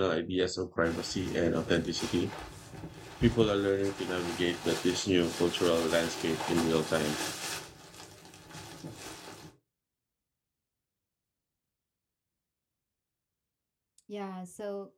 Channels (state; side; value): identical; both; correlation 1.00